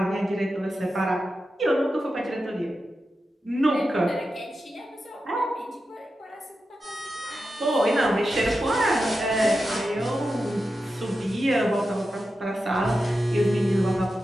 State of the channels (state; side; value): normal; both; correlation 0.90